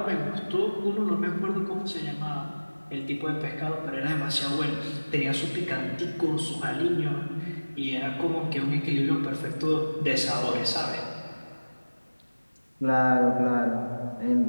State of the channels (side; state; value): both; inverted; correlation -1.00